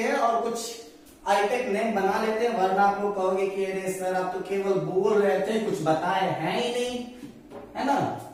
और कुछ आईटेक नेम बना लेते हैं, वरना आप लोग कहोगे कि अरे सर आप तो केवल बोल रहे थे, कुछ बताए हैं ही नहीं, है ना।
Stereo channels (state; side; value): identical; both; correlation 1.00